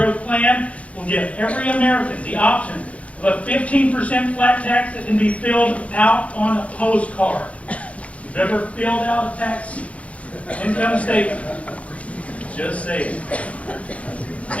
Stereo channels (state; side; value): late; right; 0.065 ms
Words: plan will give every American the option of a 15% flat tax that can be filled out on a postcard. You've ever filled out a tax income statement? Just say it.